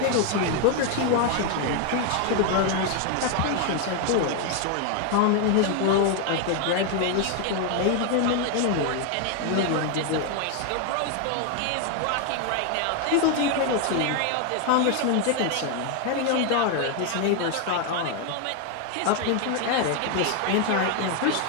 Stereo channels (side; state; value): both; different; correlation 0.01